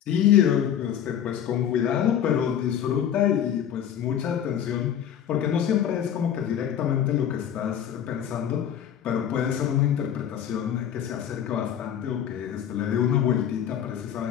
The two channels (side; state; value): right; quieter; 9.5 dB